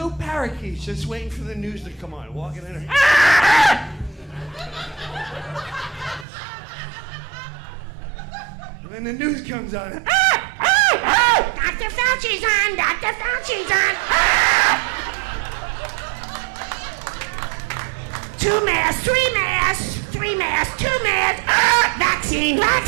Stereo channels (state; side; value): drops out; left; at 6.2 s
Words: parakeets just waiting for the news to come on, walking in. And then the news comes on. Dr. Fauci's on! Dr. Fauci's on! Two masks, three masks, three masks, two masks. Vaccine,